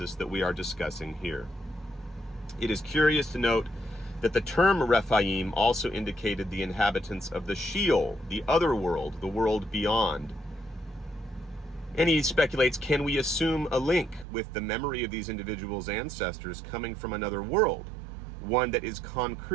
that we are discussing here. It is curious to note that the term Rephaim also indicated the inhabitants of the Sheol, the other world, the world beyond. And he speculates, can we assume a link with the memory of these individuals' ancestors coming from another world, one that is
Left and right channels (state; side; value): drops out; left; at 14.2 s